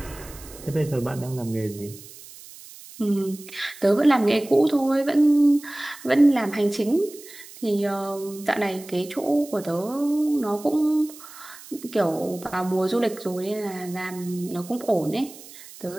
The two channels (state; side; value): noise; right; hiss, 18 dB below the sound